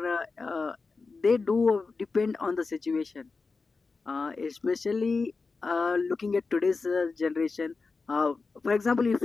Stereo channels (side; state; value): right; quieter; 4.2 dB